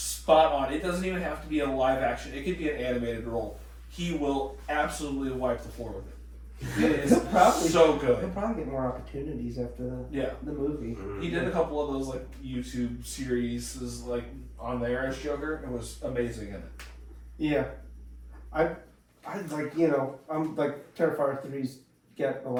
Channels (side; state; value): both; identical; correlation 1.00